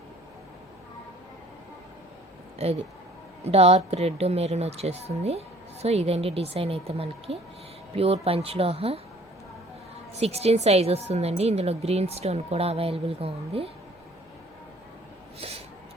ఇది డార్క్ రెడ్ మెరూన్ వచ్చేస్తుంది. సో ఇదండి డిజైన్ అయితే మనకి ప్యూర్ పంచలోహ 16 సైజ్ వస్తుందండి. ఇందులో గ్రీన్ స్టోన్ కూడా అవైలబుల్గా ఉంది.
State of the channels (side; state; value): both; normal; correlation 0.55